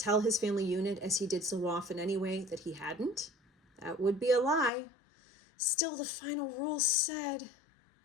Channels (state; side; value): drops out; right; at 4.7 s